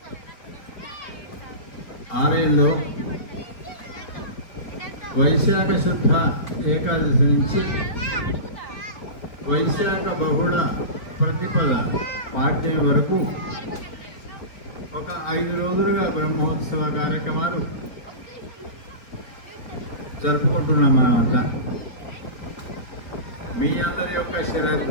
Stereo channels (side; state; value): right; late; 4.3 ms